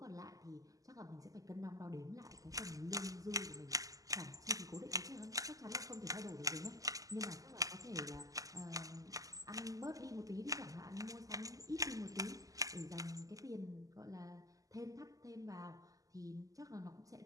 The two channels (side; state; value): left; late; 0.17 ms